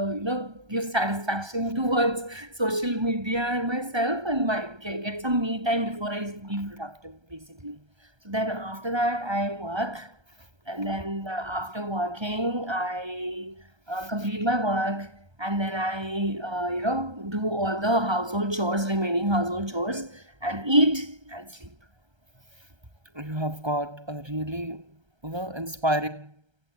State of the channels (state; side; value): late; left; 1.3 ms